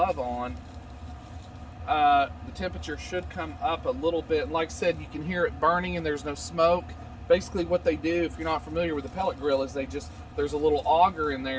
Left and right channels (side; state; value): both; identical; correlation 1.00